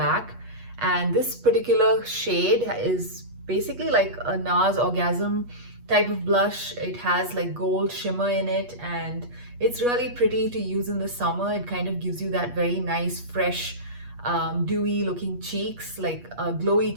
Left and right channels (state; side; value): late; left; 8.3 ms